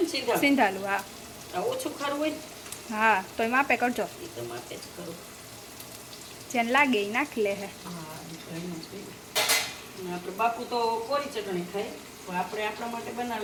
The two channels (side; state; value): both; identical; correlation 1.00